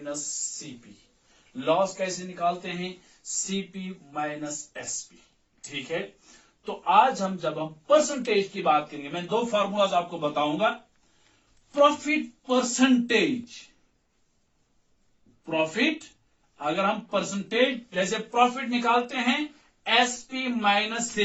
सीपी. लॉस कैसे निकालते हैं, सीपी माइनस एसपी. ठीक है. तो आज हम जब हम परसेंटेज की बात करेंगे, मैं दो फार्मूलाज आपको बताऊंगा. प्रॉफिट परसेंटेज, प्रॉफिट अगर हम परसेंटेज जैसे प्रॉफिट निकालते हैं एसपी माइनस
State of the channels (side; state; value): both; identical; correlation 1.00